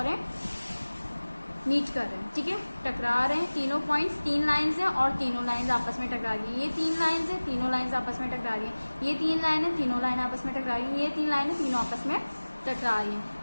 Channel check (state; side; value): inverted; both; correlation -1.00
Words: हैं, मीट कर रहे हैं, ठीक है, टकरा रहे हैं। तीनों पॉइंट्स, तीन लाइंस हैं और तीनों लाइंस आपस में टकरा रही हैं, ये तीन लाइंस हैं, तीनों लाइंस आपस में टकरा रही हैं, ये तीन लाइन है, तीनों लाइन आपस में टकरा रही हैं, ये तीन लाइन है, तीनों आपस में टकरा रही